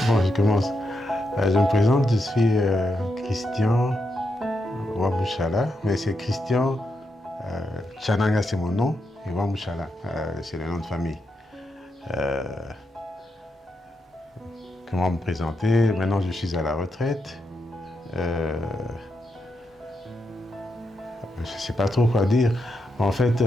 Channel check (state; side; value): normal; both; correlation 0.84